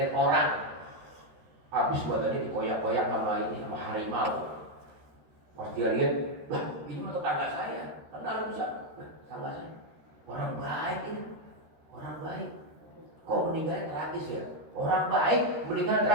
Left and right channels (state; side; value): late; left; 13 ms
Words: orang habis badannya dikoyak-koyak sama harimau. Pas dia lihat, wah ini mah tetangga saya. Kenal Musa? Tetangga saya. Orang baik ini, orang baik. Kok meninggalnya tragis ya? Orang baik meninggal